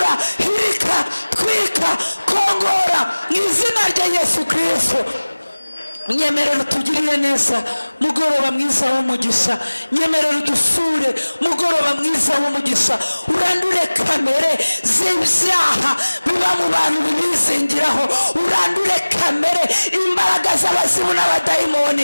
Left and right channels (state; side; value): inverted; both; correlation -1.00